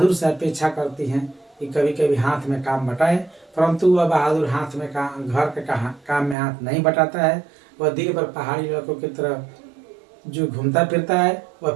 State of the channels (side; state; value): left; drops out; at 6.4 s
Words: से अपेक्षा करती हैं कि कभी कभी हाथ में काम बटाए, परंतु वह बहादुर हाथ में घर के काम में हाथ नहीं बटाता है। वह दिन भर पहाड़ी लड़कों की तरह जो घूमता फिरता है, वह